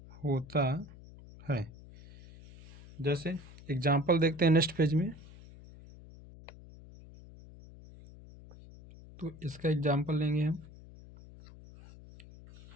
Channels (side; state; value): left; noise; hum, 19 dB below the sound